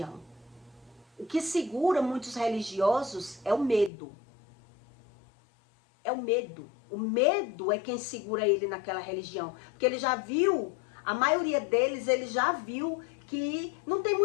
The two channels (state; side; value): drops out; right; at 3.9 s